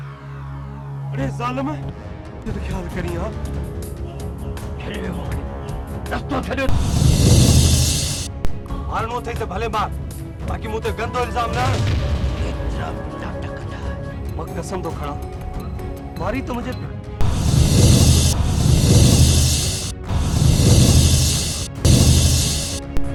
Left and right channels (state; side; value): identical; both; correlation 1.00